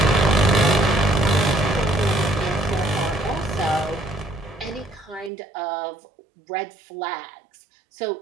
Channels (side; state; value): left; drops out; at 5.3 s